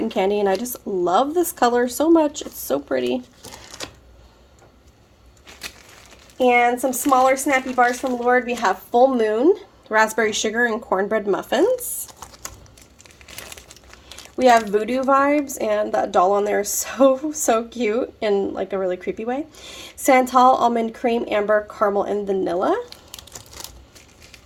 Candy. And I just love this color so much. It's so pretty. And some smaller snappy bars from Lurid. We have Full Moon, Raspberry Sugar, and Cornbread Muffins. We have Voodoo Vibes, and that doll on there is so cute in like a really creepy way. Santal, Almond Cream, Amber, Caramel, and Vanilla.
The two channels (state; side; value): identical; both; correlation 1.00